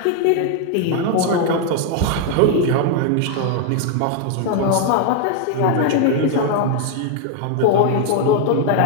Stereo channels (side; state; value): both; different; correlation 0.00